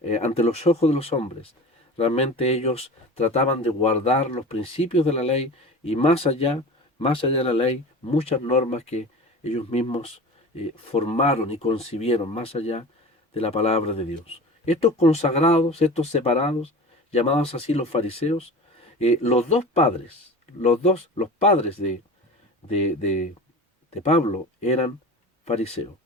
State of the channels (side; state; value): both; normal; correlation 0.35